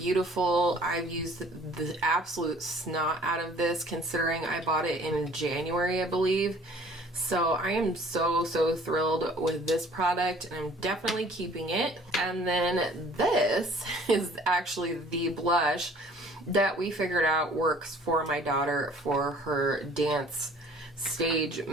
I've used the absolute snot out of this, considering I bought it in January, I believe. So I am so thrilled with this product, and I'm definitely keeping it. And then this is actually the blush that we figured out works for my daughter for her dance stage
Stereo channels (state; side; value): normal; both; correlation 0.53